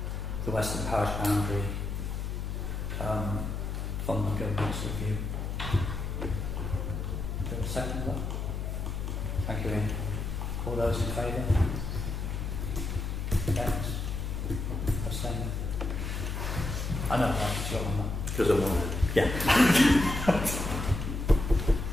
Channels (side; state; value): left; noise; hum, 3 dB below the sound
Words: the western parish boundary from the review. Do you have a second of that? Thank you, Ian. All those in favour? Against? Abstaining? I know, right, it's your one. Because I'm on it. Yeah.